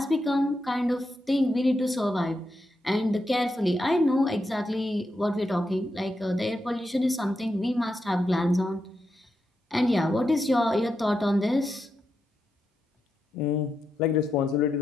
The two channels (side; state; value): both; normal; correlation 0.85